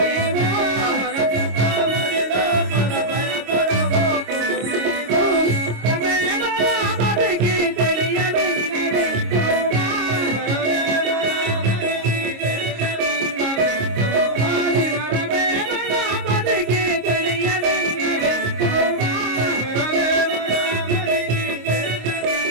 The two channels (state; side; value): late; left; 26 ms